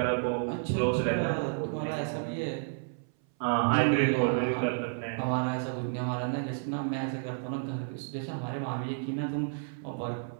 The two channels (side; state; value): left; silent; 57 dB below the other